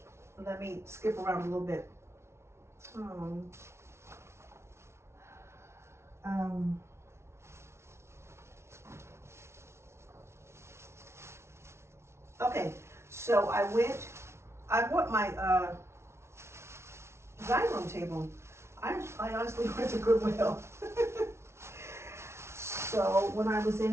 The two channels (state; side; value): late; left; 0.13 ms